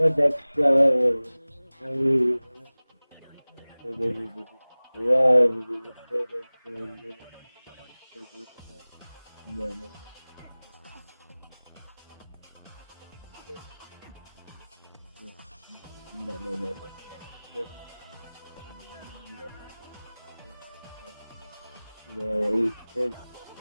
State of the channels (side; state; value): both; inverted; correlation -0.99